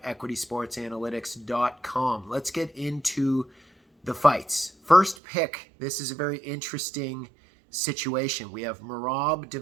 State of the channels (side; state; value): left; drops out; at 5.2 s